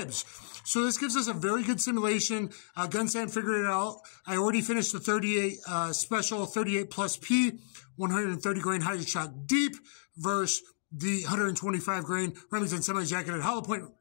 So this gives us a very good simulation. Gun Sam figured it out. I already finished the 38 special 38 plus P, 130 grain hydroshot deep versus the 125 grain Remington semi-jacketed Hollowpoint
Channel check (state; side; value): silent; right; digital silence